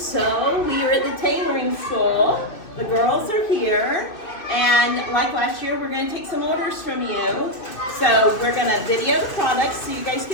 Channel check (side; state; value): right; late; 2.6 ms